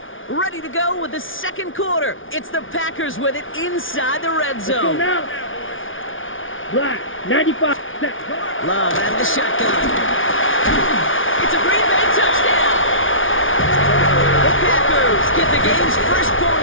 Ready to go with the 2nd quarter. It's the Packers with it inside the red Let's go zone. now. Black, 95. Love out of the shotgun. It's a Green Bay touchdown. The Packers get the game's first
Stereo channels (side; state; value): right; late; 0.57 ms